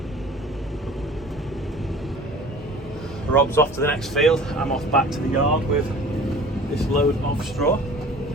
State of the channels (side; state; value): both; normal; correlation 0.45